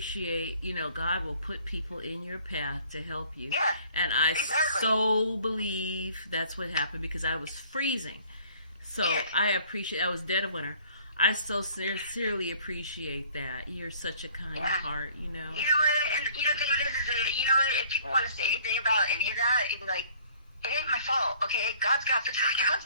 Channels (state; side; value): inverted; both; correlation -0.55